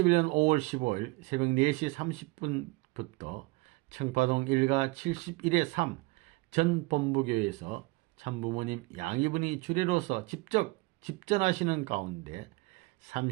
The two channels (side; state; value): left; quieter; 24.1 dB